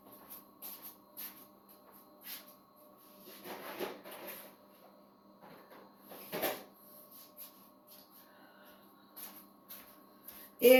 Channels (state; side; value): identical; both; correlation 1.00